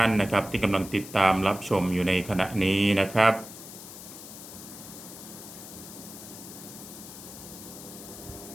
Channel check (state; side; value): noise; left; hiss, 14 dB below the sound